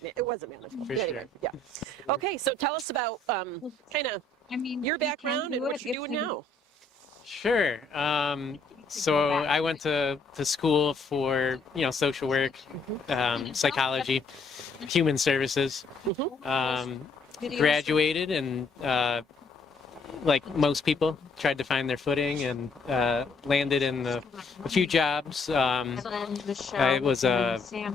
it wasn't manageable. For Anyway, sure. yeah. Okay, so tell us about kind of your background and what you're doing now. Sure. So I went to school for, social work, psychology, human services. Graduated and, like most people, tried to find their footing and landed in a few jobs. I was a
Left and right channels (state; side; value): quieter; right; 3.3 dB